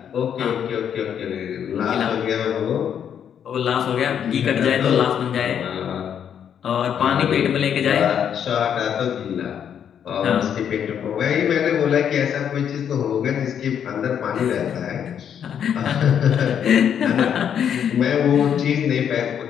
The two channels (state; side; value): quieter; right; 8.6 dB